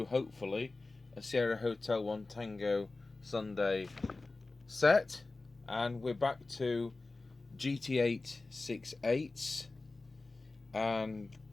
hopefully, a Sierra Hotel 1 Tango Sunday set. And we're back to GT8 6/8s, and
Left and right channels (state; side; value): quieter; right; 3.4 dB